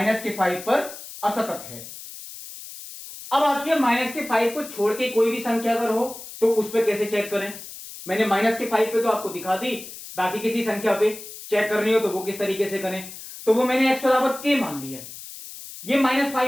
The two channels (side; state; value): left; noise; hiss, 13 dB below the sound